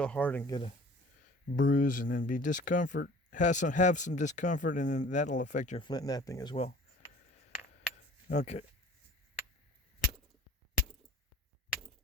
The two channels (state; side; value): normal; both; correlation 0.47